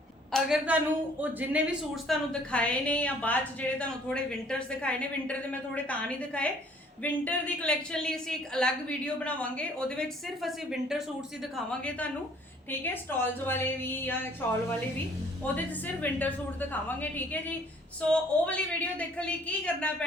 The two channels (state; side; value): normal; both; correlation 0.58